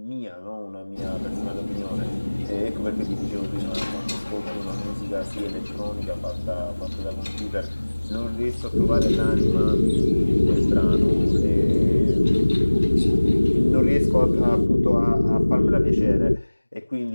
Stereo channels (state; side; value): inverted; both; correlation -1.00